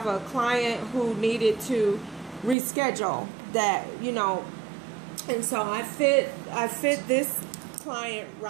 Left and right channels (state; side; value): drops out; left; at 2.6 s